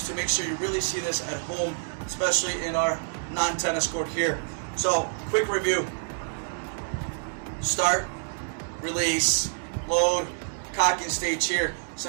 to make sure you really see this at home, especially in our non-tennis court here. So, quick review: start, release, load, cocking stage here.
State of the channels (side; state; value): left; silent; digital silence